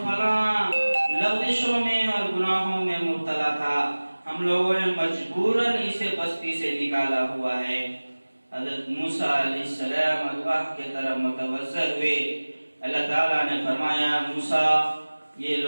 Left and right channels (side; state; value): both; inverted; correlation -1.00